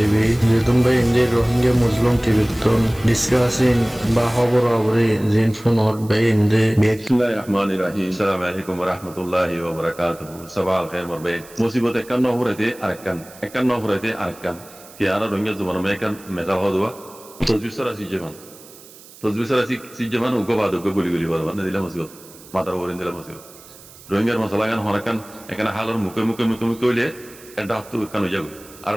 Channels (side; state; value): right; noise; hiss, 21 dB below the sound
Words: Jetun bhai inde Rohingya Muslim TV ton discussing ba hobor abri jin phone hot bhai inde Bismillahirrahmanirrahim. Assalamualaikum warahmatullahi wabarakatuh. Sabah al-khair marbe. Musibot ekkan no hurete arakkan. Ki ara Rohingya zaman mekan mesal hodwa. Tazbisara si jaman. Si jaman ugo badu ugo guli badu. Na dila musibot. Matar horin dila musibot. রোহিঙ্গার মশলাগান হরাকান এখানে হালার মুখে হইলে একটা হাত কানো যাগো আর